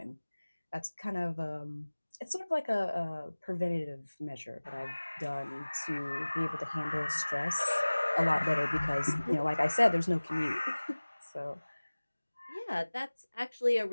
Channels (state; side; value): inverted; both; correlation -1.00